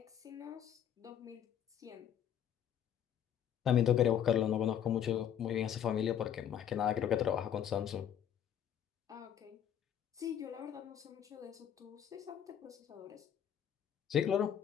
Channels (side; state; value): right; quieter; 9.4 dB